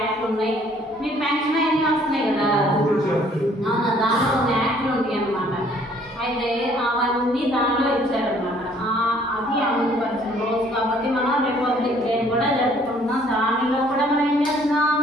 ఉన్నాయి, మీకు పెన్షన్ అన్నీ వస్తున్నాయి కదా. దాంట్లో కొన్ని యాక్ట్లు ఉంటాయి అన్నమాట. అయితే అవన్నీ దానిలో ఇచ్చారనమాట. అది అమలు పరిచిన రోజు కాబట్టి మనం రిపబ్లిక్ డే కూడా జరుపుకుంటున్నాం. దానిలో కూడా మనం ఏం చేస్తున్నాం?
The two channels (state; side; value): normal; both; correlation 0.60